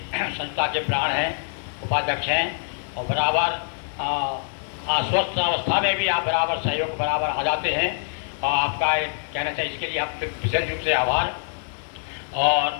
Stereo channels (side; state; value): right; silent; digital silence